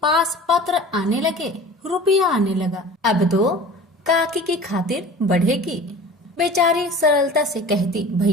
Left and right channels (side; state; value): both; normal; correlation 0.40